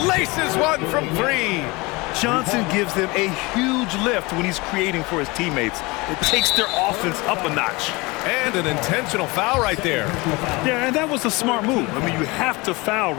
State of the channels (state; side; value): quieter; right; 24.5 dB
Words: Laces one from 3. Johnson gives them a huge lift when he's creating for his teammates. It takes their offense up a notch. And an intentional foul right there. Yeah, and that was a smart move. I mean, you have to foul